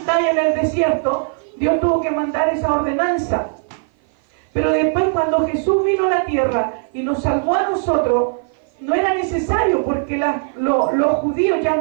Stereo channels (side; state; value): left; silent; 55 dB below the other